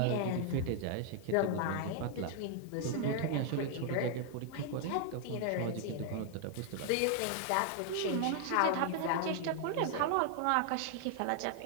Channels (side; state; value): both; different; correlation 0.00